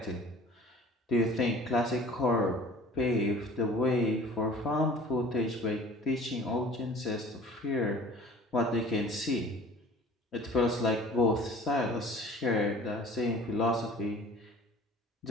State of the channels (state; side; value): normal; both; correlation 0.47